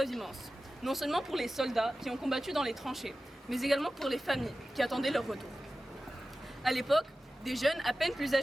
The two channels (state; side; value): normal; both; correlation 0.94